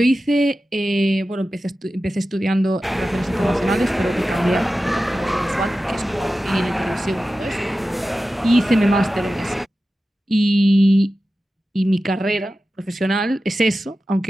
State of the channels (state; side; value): normal; both; correlation 0.94